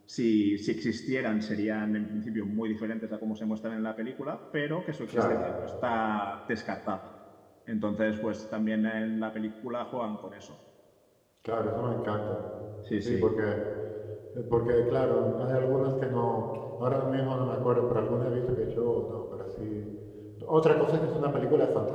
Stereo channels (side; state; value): both; identical; correlation 1.00